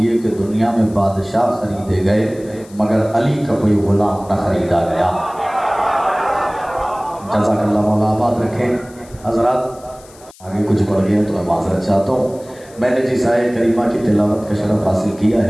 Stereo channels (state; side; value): noise; left; hiss, 24 dB below the sound